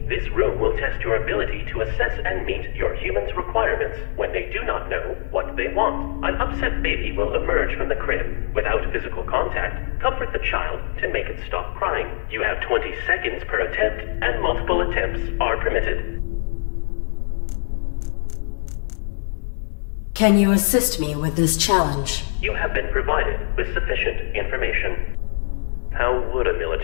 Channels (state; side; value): silent; right; 63 dB below the other